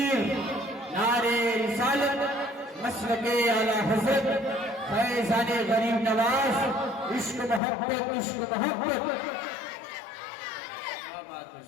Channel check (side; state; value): right; drops out; at 7.6 s